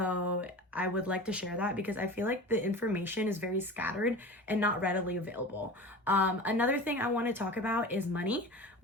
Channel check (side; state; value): both; normal; correlation 0.34